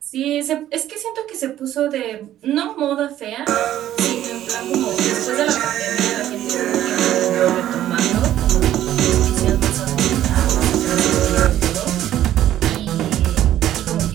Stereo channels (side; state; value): left; quieter; 12.4 dB